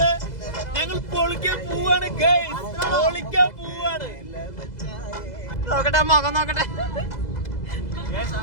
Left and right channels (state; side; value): late; right; 2.0 ms